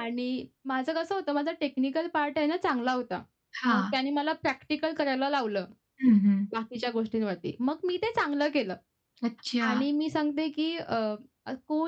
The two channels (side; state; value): both; identical; correlation 1.00